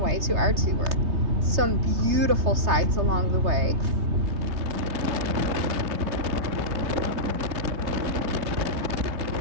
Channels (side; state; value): left; late; 3.3 ms